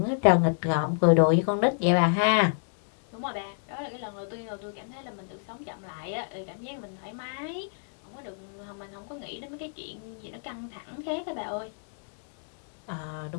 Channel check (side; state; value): right; silent; digital silence